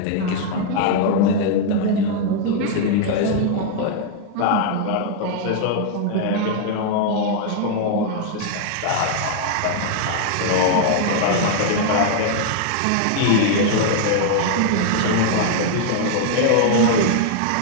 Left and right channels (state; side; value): different; both; correlation 0.00